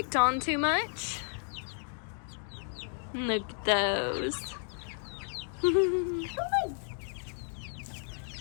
on too much. Look at those.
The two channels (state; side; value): silent; right; 56 dB below the other